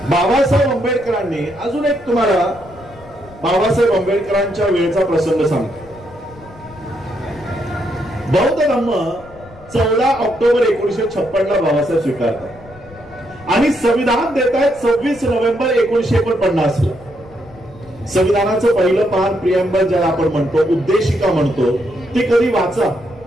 बाबासाहेब आंबेडकरांनी अजून एक तुम्हाला बाबासाहेब आंबेडकरांच्या वेळेचा प्रसंग सांगतो. बौद्ध धम्म 14 ऑक्टोबर 1956 ला बाबासाहेब स्वीकारतात आणि संविधान देत आहेत 26 नोव्हेंबर 1949 ला. संविधानाचं पहिलं पान प्रिएम्बल ज्याला आपण म्हणतो, उद्देशिका म्हणतो, ती कधी वाचा.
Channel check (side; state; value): left; noise; rumble, 22 dB below the sound